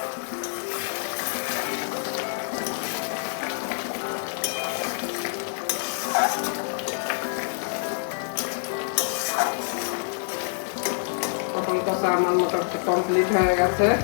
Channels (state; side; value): silent; right; digital silence